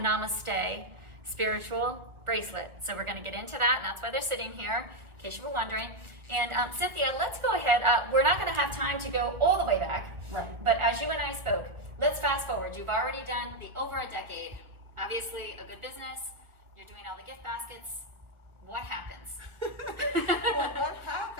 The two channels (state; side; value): late; left; 1.5 ms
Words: spiritual bracelet. So we're going to get into that, and that's why they're sitting here, in case you were wondering. And Cynthia, let's go ahead. We're not going to have time to go all the way back, right? But as you and I spoke, let's fast forward. You've already done the over a decade. Obviously, a good business. You're doing all the gift baskets. What happens? Well, what